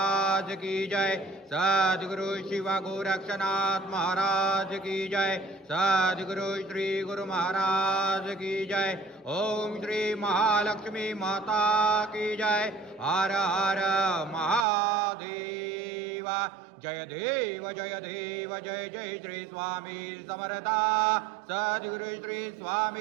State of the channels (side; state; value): left; drops out; at 14.7 s